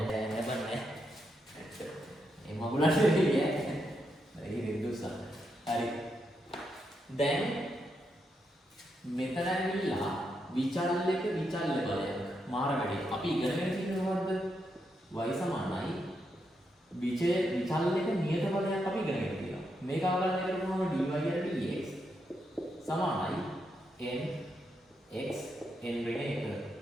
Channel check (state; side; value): normal; both; correlation 0.82